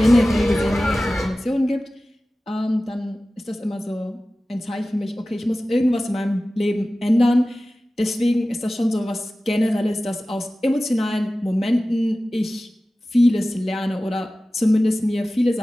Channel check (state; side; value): normal; both; correlation 0.96